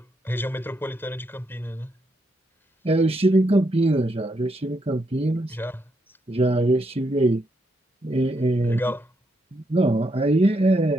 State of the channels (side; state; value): both; normal; correlation 0.79